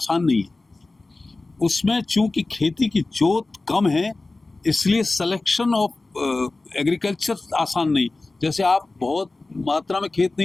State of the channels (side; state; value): right; quieter; 3.2 dB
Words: नहीं है। उसमें चूंकि खेती की जोत कम है, इसलिए सिलेक्शन ऑफ एग्रीकल्चर आसान नहीं। जैसे आप बहुत मात्रा में खेत